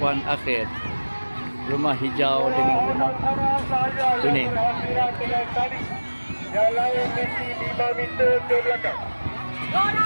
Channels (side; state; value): both; inverted; correlation -1.00